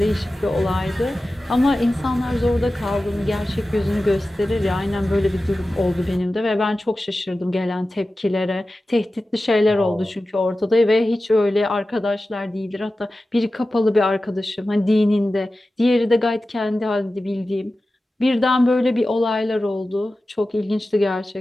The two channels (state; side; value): normal; both; correlation 0.95